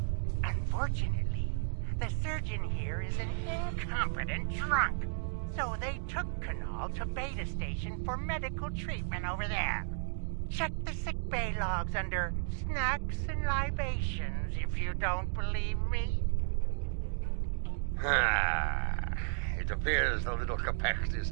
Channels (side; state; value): left; silent; digital silence